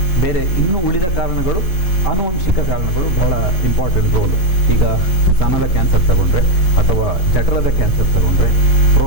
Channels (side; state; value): right; late; 5.6 ms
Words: ಬೇರೆ ಇನ್ನೂ ಉಳಿದ ಕಾರಣಗಳು, ಆನುವಂಶಿಕ ಕಾರಣಗಳು ಬಹಳ ಇಂಪಾರ್ಟೆಂಟ್ ರೋಲು. ಈಗ ಸ್ತನದ ಕ್ಯಾನ್ಸರ್ ತಗೊಂಡ್ರೆ, ಅಥವಾ ಜಠರದ ಕ್ಯಾನ್ಸರ್ ತಗೊಂಡ್ರೆ,